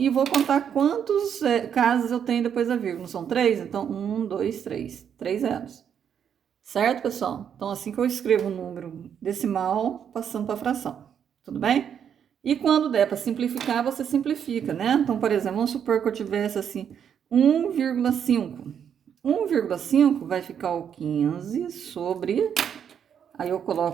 vou contar quantos casas eu tenho depois da vírgula. Não são 3? Então, 1, 2, 3. 3 zeros. Certo, pessoal? Então, assim que eu escrevo o número decimal, passando para a fração. Tudo bem? E quando der para simplificar, você simplifica, né? Então, por exemplo, vamos supor que eu tivesse assim 1,5. 1,5 vai ficar o 15 sobre... Aí eu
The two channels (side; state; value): left; quieter; 8.3 dB